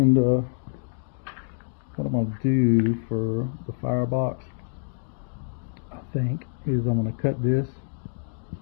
what I'm gonna do for the firebox, I think, is I'm gonna cut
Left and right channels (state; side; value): silent; right; digital silence